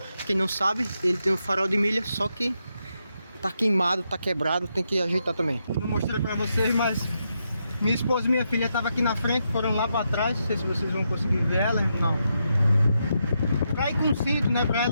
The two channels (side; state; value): both; inverted; correlation -0.83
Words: Quem não sabe, ele tem um farol de milha, só que tá queimado, tá quebrado, tem que ajeitar também. Não mostrei pra vocês, mas minha esposa e minha filha estavam aqui na frente, foram lá pra trás. Não sei se vocês vão conseguir ver ela, não. Pra ir com cinto, né? Pra